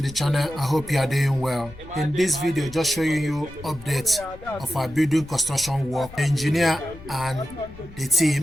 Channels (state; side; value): noise; left; rumble, 18 dB below the sound